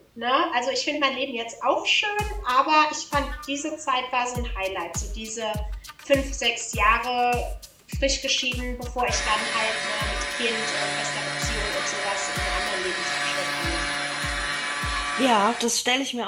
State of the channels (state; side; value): identical; both; correlation 1.00